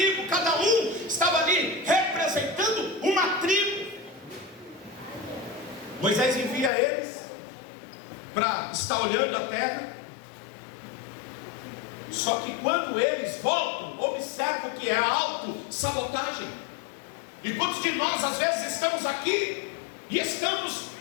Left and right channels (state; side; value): drops out; right; at 6.7 s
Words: Cada um estava ali representando uma tribo. Moisés envia eles para estar olhando a terra. Só que quando eles voltam, observa o que é autossabotagem. E quantos de nós às vezes estamos aqui e estamos